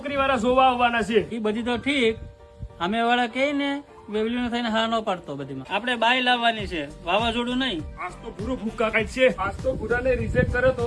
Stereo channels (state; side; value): identical; both; correlation 1.00